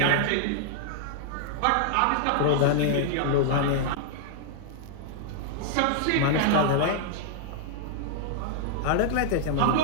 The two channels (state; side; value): different; both; correlation -0.01